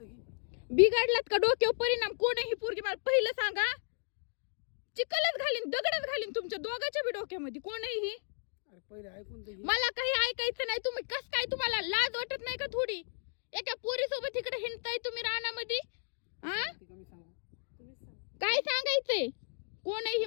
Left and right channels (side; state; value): right; silent; digital silence